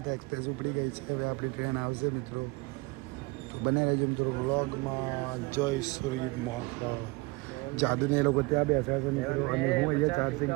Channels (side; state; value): left; quieter; 25.3 dB